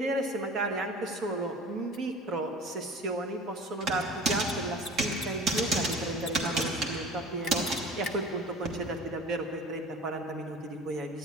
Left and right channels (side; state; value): both; normal; correlation 0.40